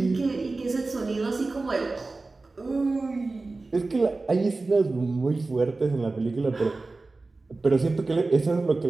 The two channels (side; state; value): left; quieter; 3.5 dB